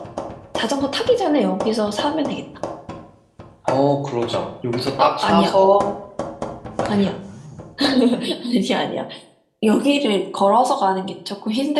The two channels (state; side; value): identical; both; correlation 1.00